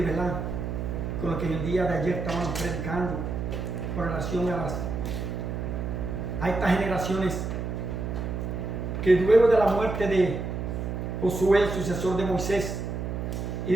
¿verdad?, con lo que en el día de ayer estábamos predicando con relación a estas generaciones que luego de la muerte de Josué, el sucesor de Moisés, y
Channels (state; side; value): noise; right; hum, 4 dB below the sound